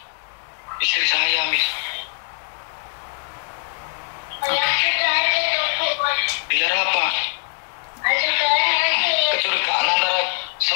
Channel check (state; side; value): silent; right; digital silence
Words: Istri saya, Miss. Biar apa? Kecurigaan antara